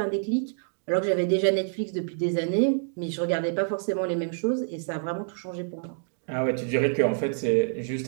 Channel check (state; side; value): silent; left; digital silence